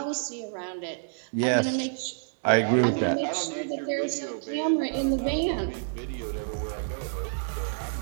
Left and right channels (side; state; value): left; silent; digital silence